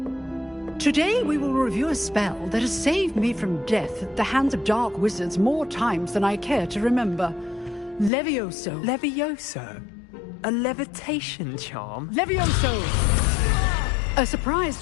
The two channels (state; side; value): drops out; right; at 8.1 s